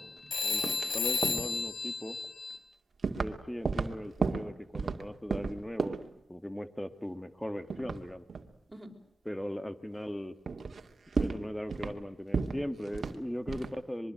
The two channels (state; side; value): normal; both; correlation 0.89